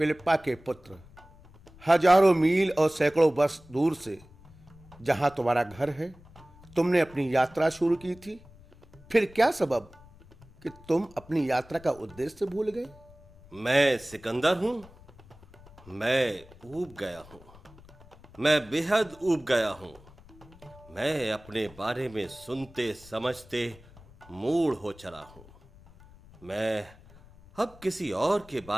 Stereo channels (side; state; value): left; noise; rumble, 23 dB below the sound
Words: के पुत्र। हजारों मील और सैकड़ों वर्ष दूर से जहां तुम्हारा घर है, तुमने अपनी यात्रा शुरू की थी। फिर क्या सबब कि तुम अपनी यात्रा का उद्देश्य भूल गए? मैं सिकंदर हूं। मैं ऊब गया हूं, मैं बेहद ऊब गया हूं। मैं अपने बारे में सुनते समझते मूड हो चला हूं। मैं अब किसी और के